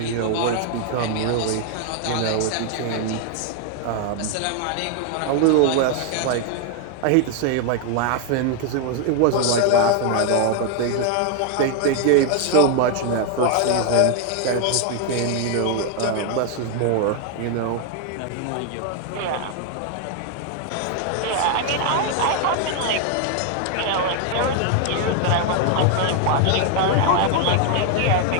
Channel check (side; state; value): both; different; correlation 0.00